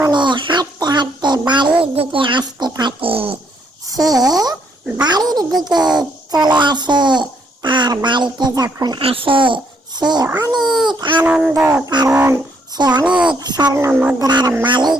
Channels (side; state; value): both; normal; correlation 0.71